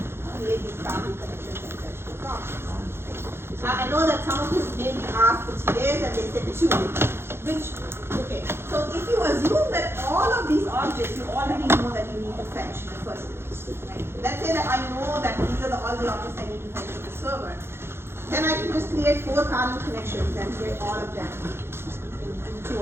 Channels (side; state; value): left; late; 0.12 ms